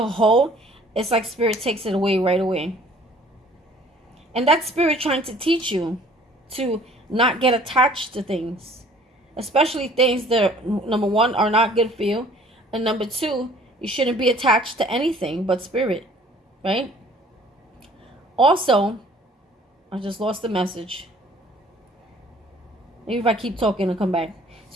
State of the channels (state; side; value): normal; both; correlation 0.54